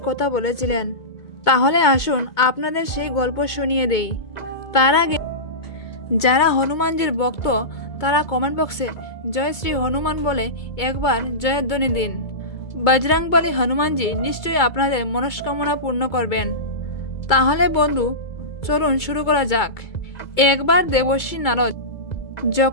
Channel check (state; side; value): late; right; 2.3 ms